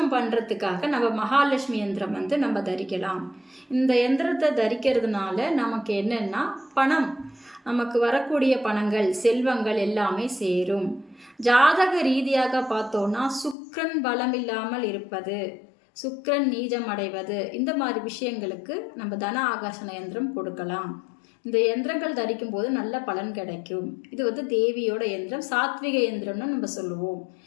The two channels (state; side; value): drops out; right; at 13.6 s